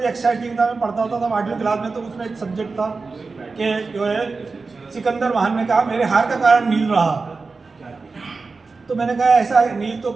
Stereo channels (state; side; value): quieter; left; 4.2 dB